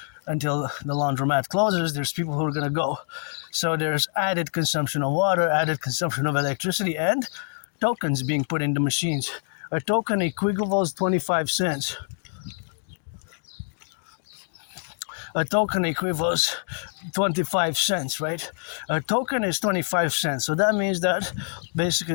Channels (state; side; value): silent; right; digital silence